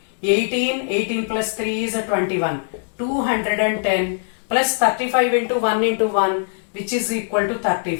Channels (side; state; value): right; silent; digital silence